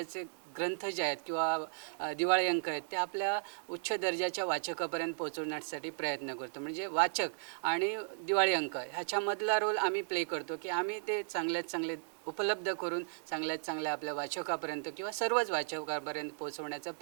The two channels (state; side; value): silent; left; digital silence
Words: ग्रंथ जे आहेत किंवा दिवाळी अंक आहेत ते आपल्या उच्च दर्जाच्या वाचकापर्यंत पोहोचवण्यासाठी प्रयत्न करतो. म्हणजे वाचक आणि दिवाळी अंक ह्याच्यामधला रोल आम्ही प्ले करतो की आम्ही ते चांगल्यात चांगले उपलब्ध करून चांगल्यात चांगल्या आपल्या वाचकापर्यंत किंवा सर्वच वाचकापर्यंत पोहोचवण्याचा